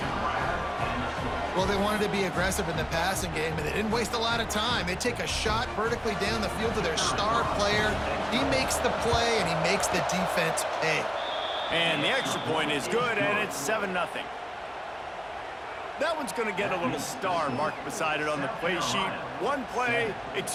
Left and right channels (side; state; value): both; identical; correlation 1.00